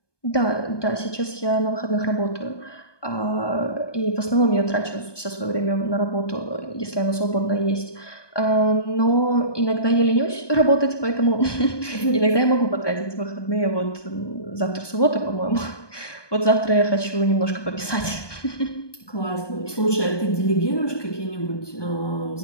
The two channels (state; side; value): late; right; 1.2 ms